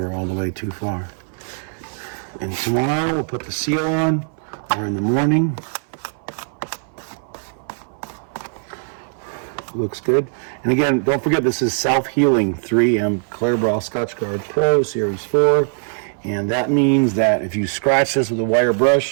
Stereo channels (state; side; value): silent; left; 60 dB below the other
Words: all the way too far. And tomorrow we'll put the seal on, or in the morning. Looks good. And again, don't forget, this is self-healing 3M Clear Scotch Guard Pro Series 4. And that means that if you scratch this with a wire